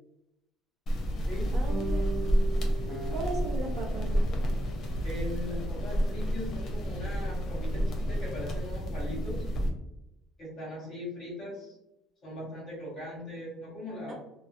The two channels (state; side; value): normal; both; correlation 0.85